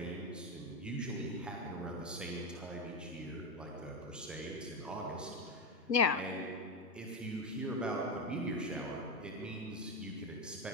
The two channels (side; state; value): both; normal; correlation 0.11